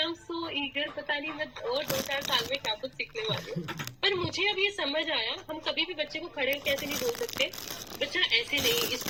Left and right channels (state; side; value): identical; both; correlation 1.00